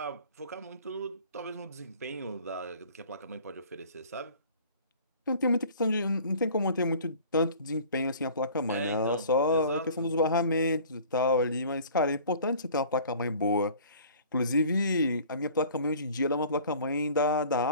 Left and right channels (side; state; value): both; inverted; correlation -0.48